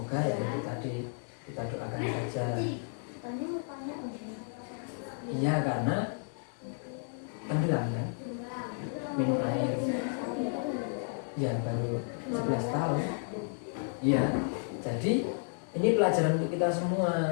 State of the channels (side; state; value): right; silent; digital silence